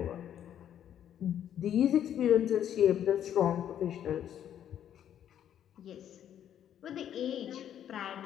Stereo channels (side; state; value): right; quieter; 10.1 dB